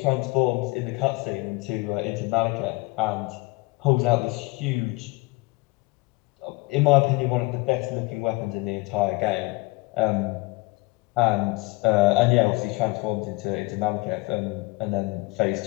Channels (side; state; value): right; quieter; 23.4 dB